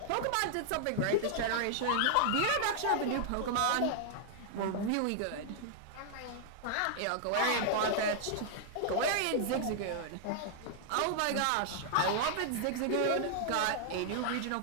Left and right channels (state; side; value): different; both; correlation -0.01